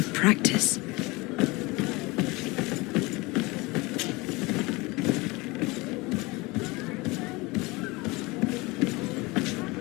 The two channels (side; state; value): right; quieter; 23.7 dB